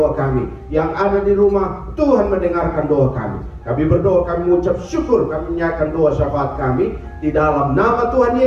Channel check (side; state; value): both; identical; correlation 1.00